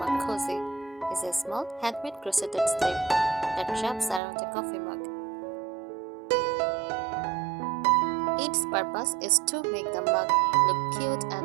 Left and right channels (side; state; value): left; drops out; at 4.2 s